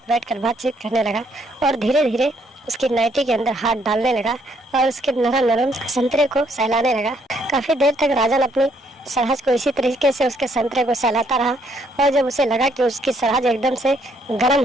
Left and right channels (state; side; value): normal; both; correlation 0.69